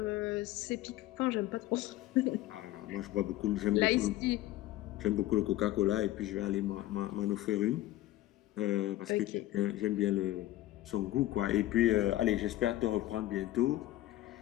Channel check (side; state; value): right; quieter; 15.3 dB